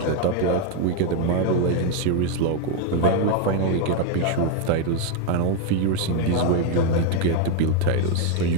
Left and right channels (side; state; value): both; different; correlation 0.01